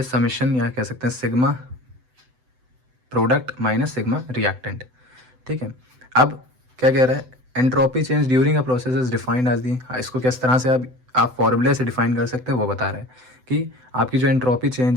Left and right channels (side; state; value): left; late; 7.9 ms